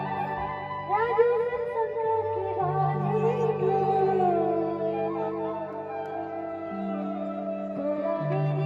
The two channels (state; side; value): identical; both; correlation 1.00